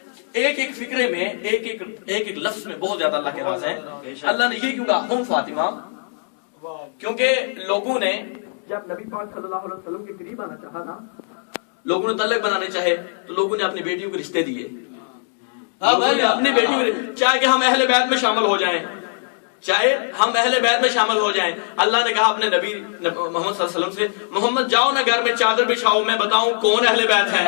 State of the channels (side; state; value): right; silent; digital silence